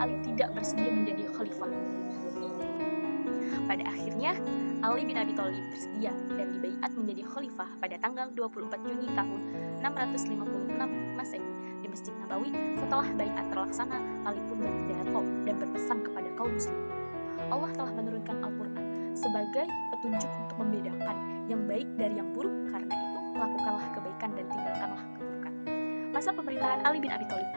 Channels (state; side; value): inverted; both; correlation -1.00